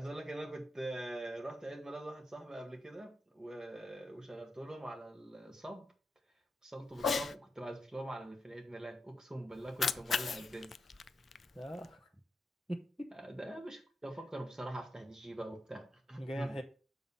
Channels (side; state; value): both; normal; correlation 0.86